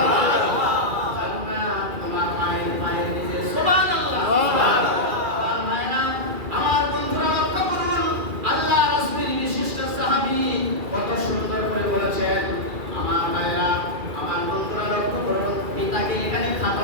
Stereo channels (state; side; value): late; left; 2.3 ms